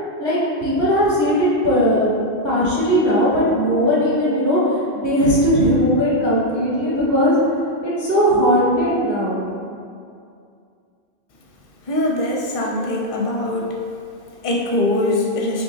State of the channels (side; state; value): left; late; 2.6 ms